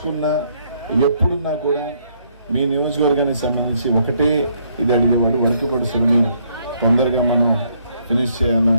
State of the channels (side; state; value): both; inverted; correlation -0.70